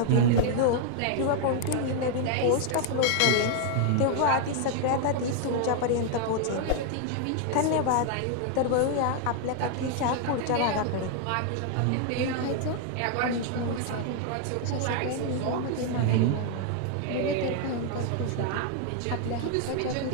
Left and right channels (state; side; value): different; both; correlation 0.00